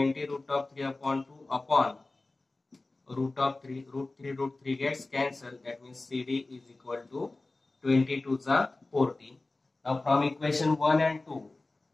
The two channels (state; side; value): quieter; right; 3.2 dB